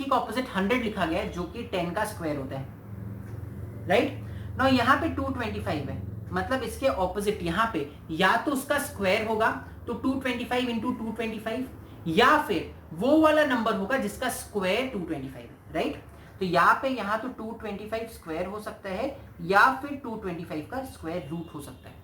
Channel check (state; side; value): identical; both; correlation 1.00